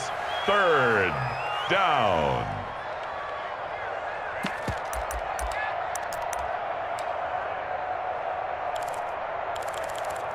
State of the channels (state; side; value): identical; both; correlation 1.00